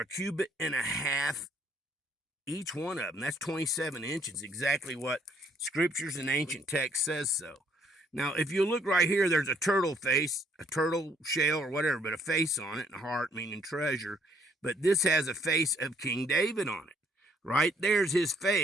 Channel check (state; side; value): normal; both; correlation 0.66